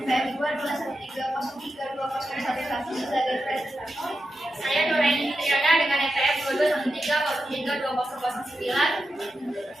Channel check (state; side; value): normal; both; correlation 0.89